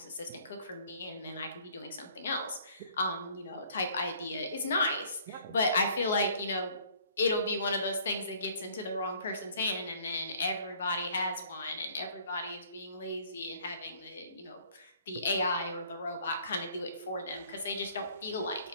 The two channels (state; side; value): inverted; both; correlation -0.57